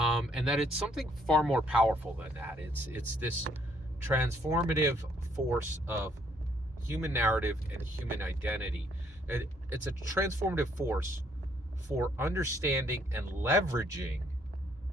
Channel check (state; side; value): normal; both; correlation 0.67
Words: that it's something far more powerful than that. It's this transformative force of human narrative and human identity. It's a transformative force for understanding and leveraging